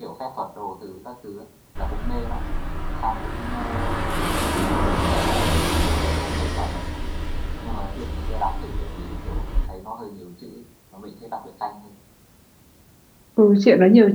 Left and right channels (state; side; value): identical; both; correlation 1.00